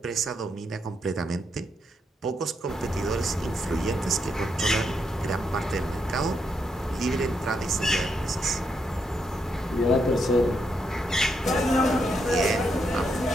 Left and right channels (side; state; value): both; normal; correlation 0.79